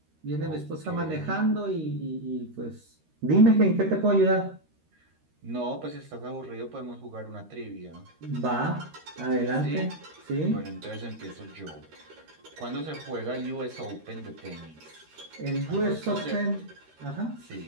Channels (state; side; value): late; left; 13 ms